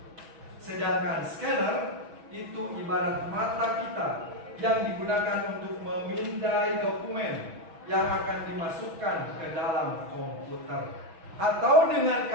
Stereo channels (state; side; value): late; left; 6.2 ms